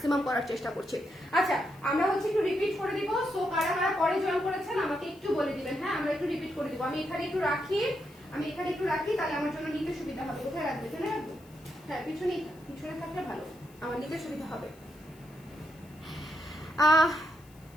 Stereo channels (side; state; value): left; noise; hiss, 27 dB below the sound